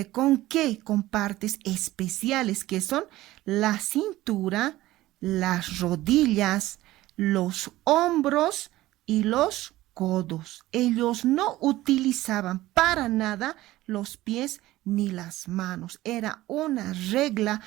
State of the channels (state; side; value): quieter; left; 16.6 dB